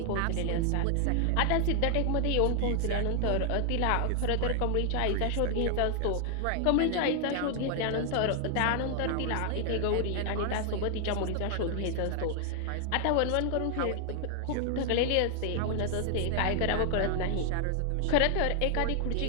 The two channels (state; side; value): different; both; correlation 0.00